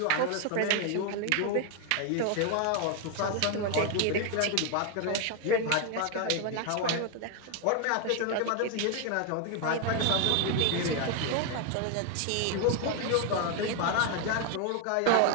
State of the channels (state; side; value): different; both; correlation 0.01